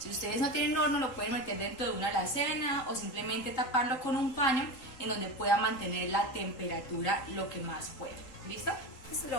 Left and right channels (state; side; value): late; right; 3.8 ms